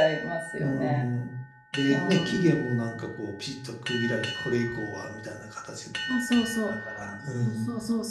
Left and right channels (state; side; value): identical; both; correlation 1.00